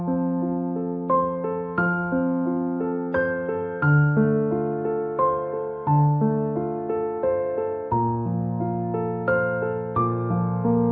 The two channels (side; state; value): both; identical; correlation 1.00